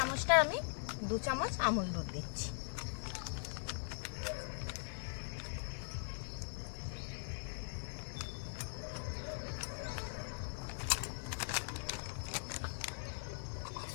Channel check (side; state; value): right; silent; digital silence